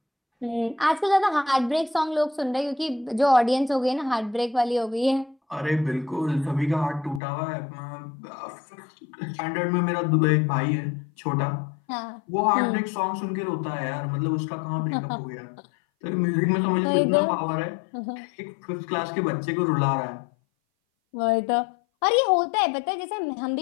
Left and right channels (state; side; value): drops out; right; at 7.2 s